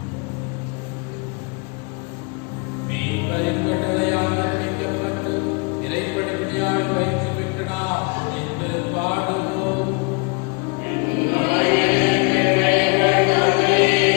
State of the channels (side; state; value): right; quieter; 32.5 dB